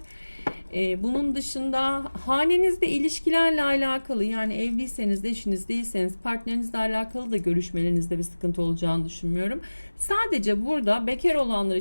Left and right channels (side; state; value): both; inverted; correlation -1.00